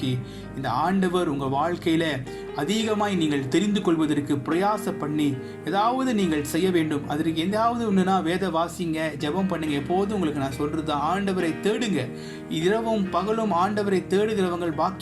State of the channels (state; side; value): identical; both; correlation 1.00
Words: இந்த ஆண்டவர் உங்கள் வாழ்க்கையில அதிகமாய் நீங்கள் தெரிந்து கொள்வதற்கு பிரயாச பண்ணி ஏதாவது நீங்கள் செய்ய வேண்டும். அதற்கு எதாவது ஒன்றுனா வேத வாசிங்க, ஜெபம் பண்ணுங்க. எப்போதும் உங்களுக்கு நான் சொல்றது ஆண்டவரை தேடுங்க. இரவும் பகலும் ஆண்டவரை தேடுகிறவங்கள்